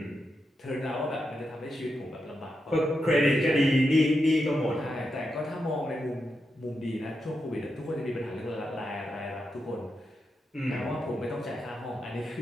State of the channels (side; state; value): both; normal; correlation 0.86